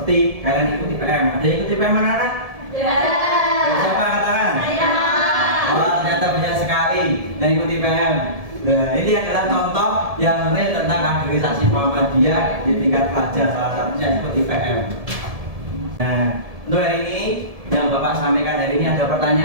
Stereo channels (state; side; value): late; left; 1.7 ms